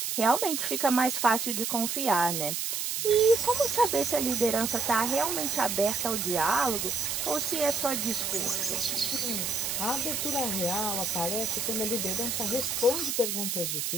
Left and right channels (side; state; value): right; noise; hiss, 1 dB below the sound